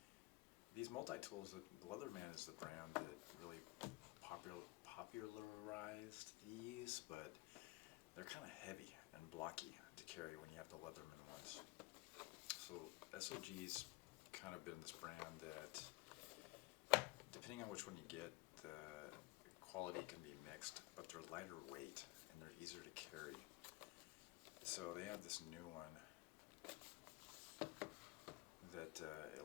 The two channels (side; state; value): right; quieter; 21.9 dB